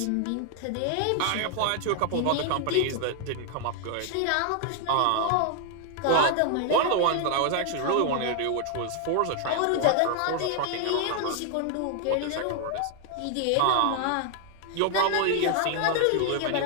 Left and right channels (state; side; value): different; both; correlation 0.00